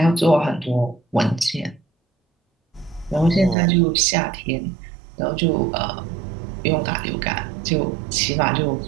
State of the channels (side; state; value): left; drops out; at 3.6 s